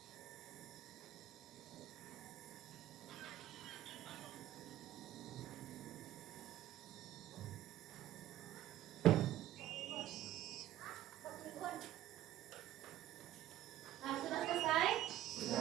Nah, sudah selesai?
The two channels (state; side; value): quieter; left; 13.5 dB